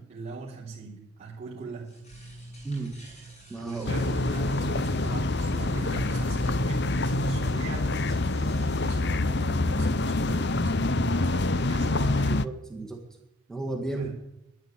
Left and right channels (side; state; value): both; normal; correlation 0.64